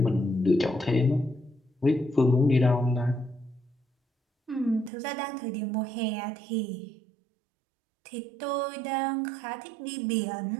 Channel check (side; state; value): left; drops out; at 4.9 s